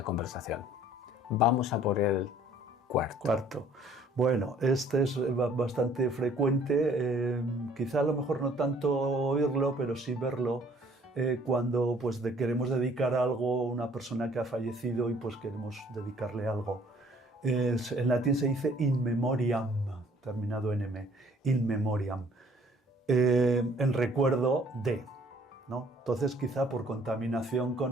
conversación. Vamos a por el cuarto. Bueno, este es bastante frecuente, quizá a lo mejor no tanto oírlo, pero sí verlo cuando pues, queremos dedicar algo a una persona que ha fallecido y pues queremos dedicarle algo. En latín se dice in memoriam, terminado en m, in memoriam, en recuerdo de, ¿no? Entonces quizá por contaminación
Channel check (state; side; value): normal; both; correlation 0.58